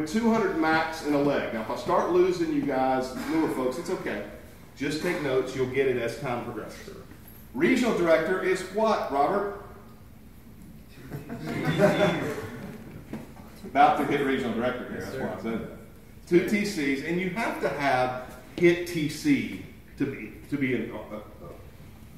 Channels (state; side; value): identical; both; correlation 1.00